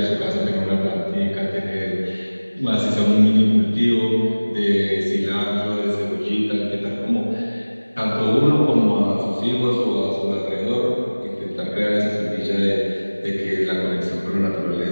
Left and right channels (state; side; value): inverted; both; correlation -1.00